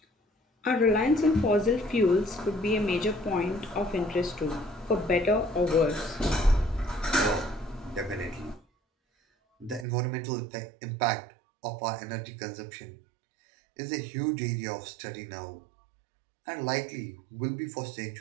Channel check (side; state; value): left; drops out; at 9.9 s